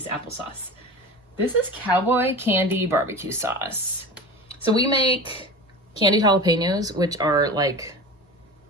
applesauce. This is cowboy candy barbecue sauce. So we make candied jalapenos, which are like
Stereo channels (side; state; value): both; normal; correlation 0.32